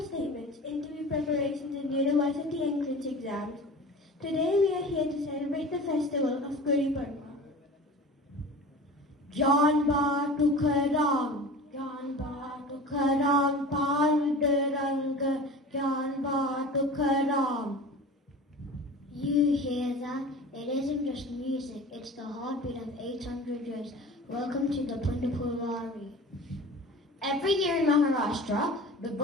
statements, interview preparations, and university entrance exams. Today we are here to celebrate the festival of Gudi Padwa. Gyanba Tukaram. Gyanba Tukaram, Pandharpur Gyanba Tukaram. You hear that? It isn't just music, it's the heartbeat of 800 years. Welcome to the Pandharpur Wari. Every year in Maharashtra, the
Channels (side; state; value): both; normal; correlation 0.37